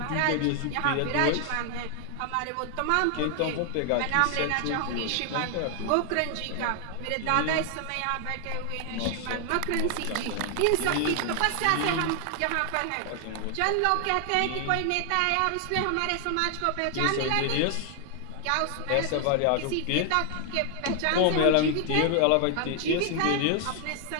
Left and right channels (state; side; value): different; both; correlation 0.00